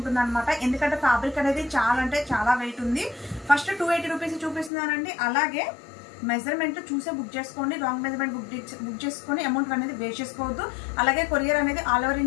అనమాట. ఎందుకంటే ఫ్యాబ్రిక్ అనేది చాలా వెయిట్ ఉంది. ఫస్ట్ 280 రూపీస్ చూపిస్తున్నానండి. అలాగే మెజర్మెంట్ చూసే బుక్ చేసుకోండి. రాంగ్ మెజర్మెంట్ బుక్ చేసుకొని అమౌంట్ అనేది వేస్ట్ చేసుకోవద్దు. అలాగే కొరియర్ అనేది ఆల్ ఓవర్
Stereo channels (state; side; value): drops out; right; at 4.7 s